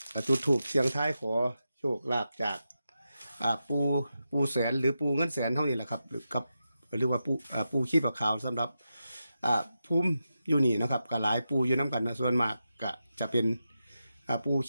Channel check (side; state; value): both; inverted; correlation -0.89